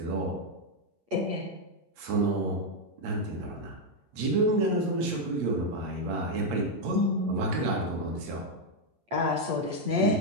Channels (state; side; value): late; left; 8.6 ms